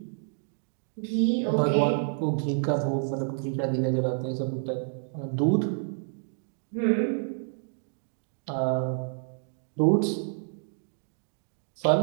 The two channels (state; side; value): silent; left; digital silence